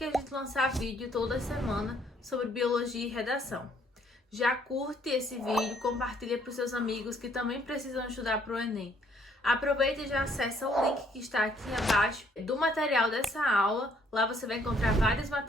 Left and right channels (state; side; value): normal; both; correlation 0.66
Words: a gente lançar vídeo toda semana sobre biologia e redação. Já curte esse vídeo, compartilha para os seus amigos que também precisam estudar para o Enem. Aproveita e já acessa o link que está aqui abaixo do material dessa aula. Lá você vai encontrar vários